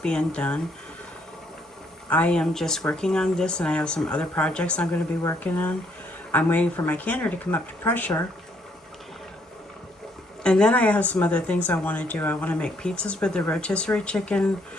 done. I am just working on this, and I have some other projects I'm going to be working on. I'm waiting for my canner to come up to pressure. And then I have some other things I want to do. I want to make pizzas with the rotisserie chicken,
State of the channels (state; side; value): normal; both; correlation 0.69